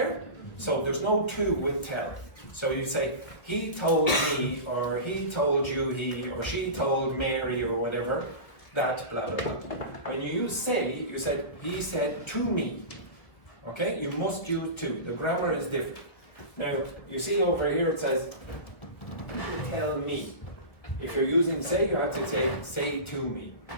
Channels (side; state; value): right; late; 1.7 ms